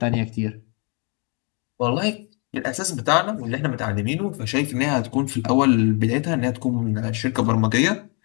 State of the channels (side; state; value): right; quieter; 34.7 dB